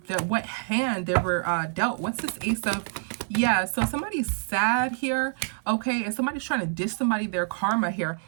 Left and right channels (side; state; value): left; silent; digital silence